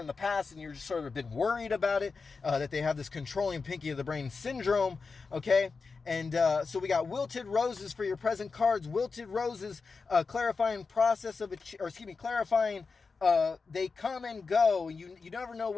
the past, and you're just sort of been worried about it, that they have this controlling pinky of the brain syndrome. Okay, and so we got wilted roses for your present cards. Wilted roses, clarifying process of clarifying. They come and go. You never know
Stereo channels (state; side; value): quieter; right; 4.6 dB